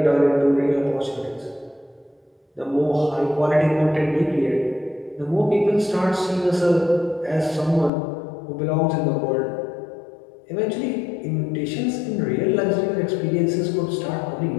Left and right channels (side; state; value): right; drops out; at 7.9 s